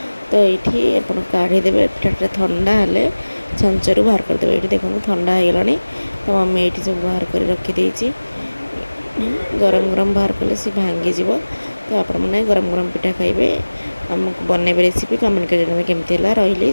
तो ये आप काढ़ीदेवे पिठाटा ठंडा हेल्ले छांचरू बाहर करदे ये देखो ठंडा हो गला तो मम्मी ये सब बाहर कर रखीदे गरम गरम बाहर कले सी भांगीज तो आपण मैंने गरम गरम पिठा खाइबे ଆମକୁ ବନେଇବେ ରେସିପି କମେଣ୍ଟ କରି ଜଣାଇବେ କେମିତି ହେଲା। ରହିଲି,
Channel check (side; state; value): both; inverted; correlation -1.00